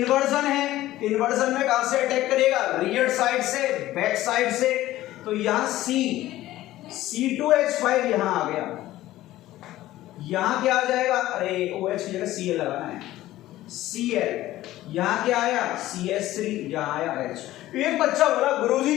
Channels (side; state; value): right; quieter; 15.4 dB